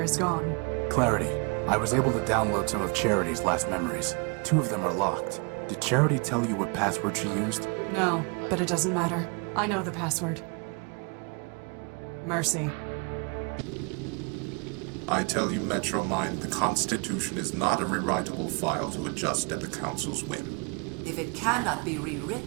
is gone. Clarity. I was able to download some of Charity's last memories. 2 of them are locked. Did Charity tell you what password she used? No, but it doesn't matter. I know the password. Mercy. I tell you, Metromind, the Constitution is not a rewritable file to adjust at the Council's whim. If it cannot be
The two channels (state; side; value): quieter; left; 32.3 dB